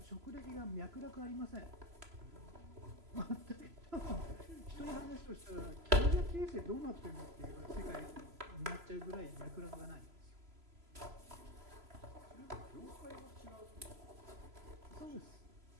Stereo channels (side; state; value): left; late; 3.0 ms